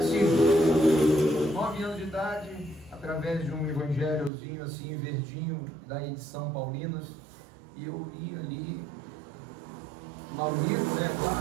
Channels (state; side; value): drops out; left; at 4.3 s